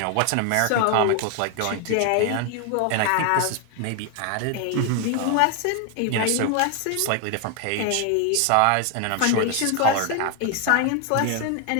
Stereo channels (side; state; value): both; different; correlation 0.01